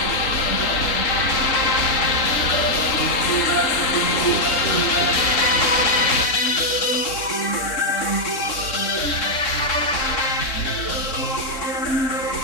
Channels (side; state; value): right; late; 3.6 ms